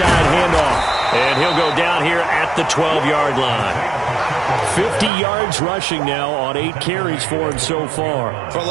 handoff. And he'll go down here at the 12-yard line. 50 yards rushing now on 8 carries for him so far. For a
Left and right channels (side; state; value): left; drops out; at 5.1 s